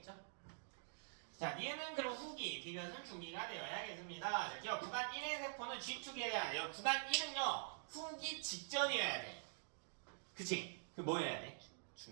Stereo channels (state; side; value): silent; left; digital silence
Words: 자, 얘는 그럼 후기, 디귿은 중기가 되어야겠습니다. 자, 기억 구간 1의 세포는 G축에 대한 구간 1은요, 후기 직전이어야 돼. 그치? 그 뭐 해야 돼?